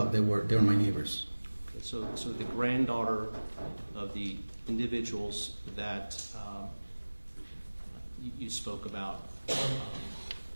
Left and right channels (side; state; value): both; inverted; correlation -1.00